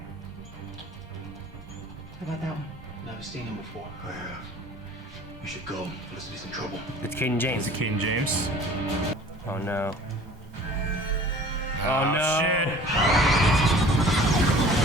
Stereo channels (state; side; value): normal; both; correlation 0.47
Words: How about that one? Never seen him before. I have. We should go. Felicity's in trouble. It's Cayden James. Is it Cayden James? Oh no. Oh Oh, no. shit.